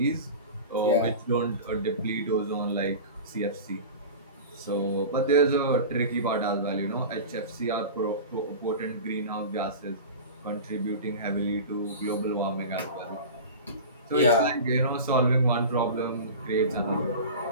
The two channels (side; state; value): both; inverted; correlation -0.32